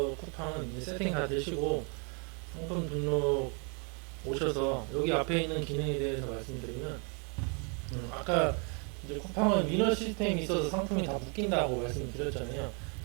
쿠팡은 이제 세팅 다 되시고 상품 등록 오셔서 여기 앞에 있는 기능에 대해서 말씀드리면 아까 이제 쿠팡은 위너 시스템이 있어서 상품이 다 묶인다고 말씀드렸잖아요.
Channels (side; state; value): left; quieter; 36.3 dB